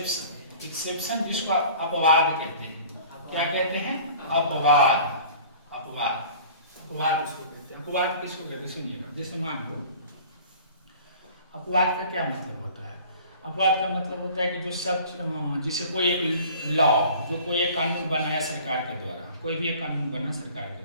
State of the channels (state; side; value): inverted; both; correlation -0.46